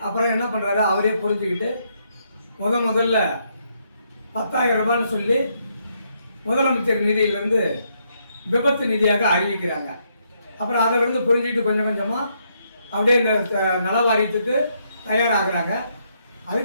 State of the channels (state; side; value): inverted; both; correlation -0.75